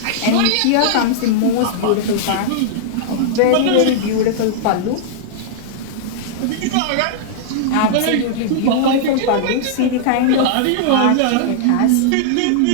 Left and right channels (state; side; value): different; both; correlation -0.02